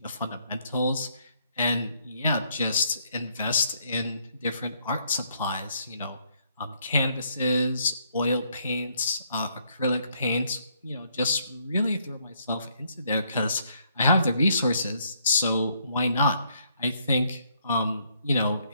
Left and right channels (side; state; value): both; inverted; correlation -0.70